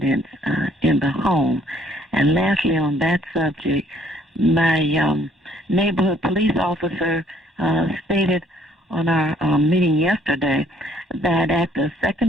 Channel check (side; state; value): both; normal; correlation 0.62